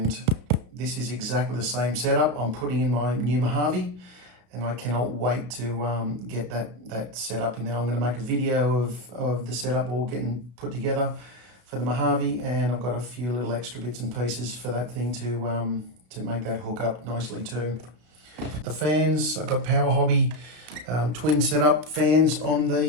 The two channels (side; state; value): left; late; 33 ms